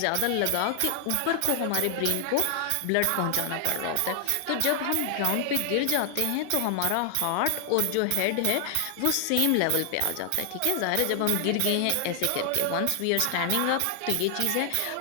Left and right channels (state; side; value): different; both; correlation 0.00